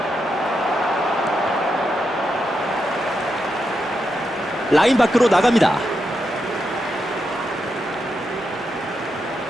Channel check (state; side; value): normal; both; correlation 0.84